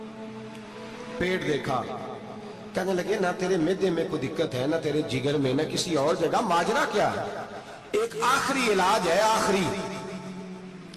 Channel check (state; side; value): identical; both; correlation 1.00